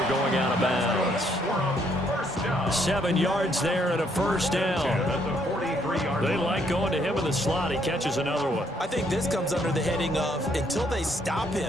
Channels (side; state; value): both; normal; correlation 0.70